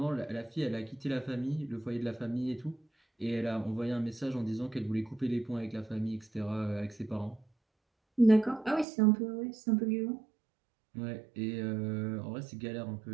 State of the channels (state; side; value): drops out; left; at 8.8 s